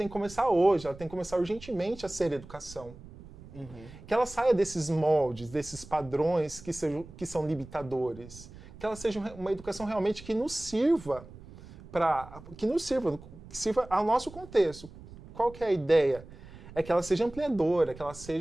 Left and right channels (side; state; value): right; noise; rumble, 18 dB below the sound